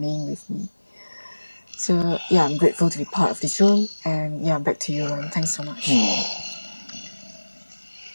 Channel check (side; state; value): both; inverted; correlation -1.00